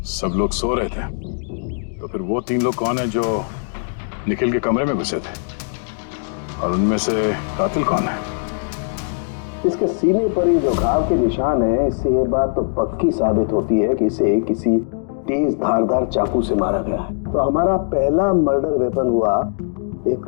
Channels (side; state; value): right; silent; digital silence